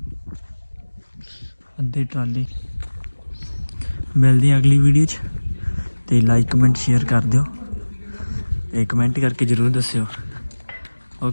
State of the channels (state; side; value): inverted; both; correlation -1.00